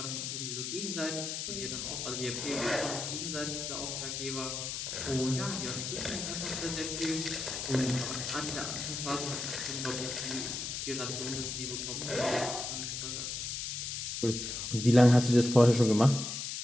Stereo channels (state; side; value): noise; left; hiss, 4 dB below the sound